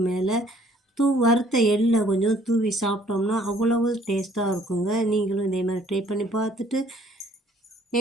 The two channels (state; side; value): normal; both; correlation 0.60